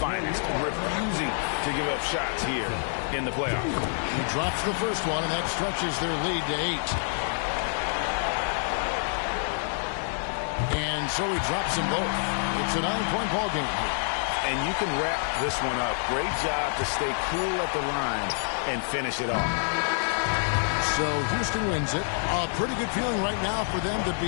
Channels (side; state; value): right; silent; 56 dB below the other